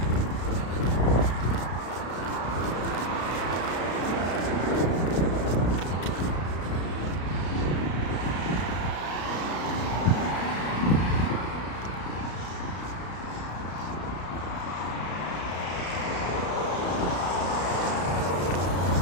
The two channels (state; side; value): late; right; 33 ms